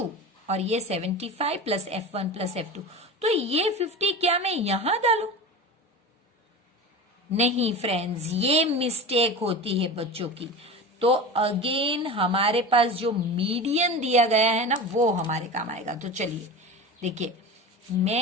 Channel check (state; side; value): normal; both; correlation 0.29